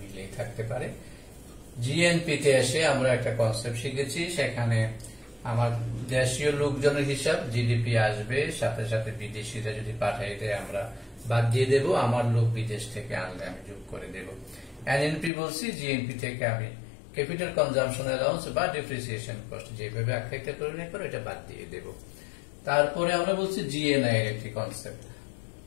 থাকতে পারে। জিএনপি তে এসে আমরা একটা কনসেপ্ট শিখেছি, সেখানে আমার দেশীয় লোকজনের হিসাব, জিডিপি আসবে, সাথে সাথে বিদেশিরা যদি পাঠাই দেয় আমরা বাদ দিয়ে দেব, আমার লোক বিদেশ থেকে আনলে আমি যোগ করে দেব। এনএনপি বলছি, জিএনপি থেকে আমি ক্যাপিটাল কনজাম্পশন অ্যালাউন্স বা ডেপ্রিসিয়েশন কস্ট যেভাবে আখ্যায়িত করে না করে এটা বাদ দিয়ে দেব। তারপরে আমরা বলছি জিএনআই এর একটি কনসেপ্ট,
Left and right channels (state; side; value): drops out; right; at 15.3 s